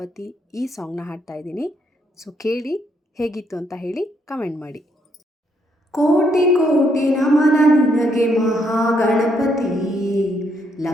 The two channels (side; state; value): both; normal; correlation 0.73